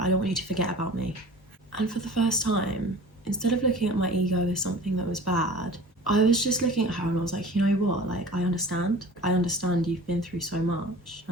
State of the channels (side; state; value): both; normal; correlation 0.41